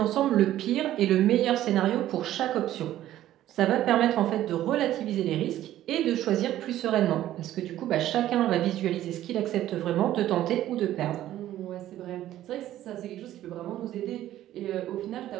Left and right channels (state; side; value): quieter; left; 13.3 dB